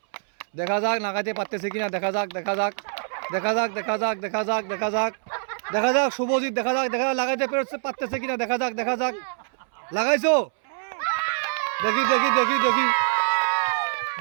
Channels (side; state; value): left; silent; 62 dB below the other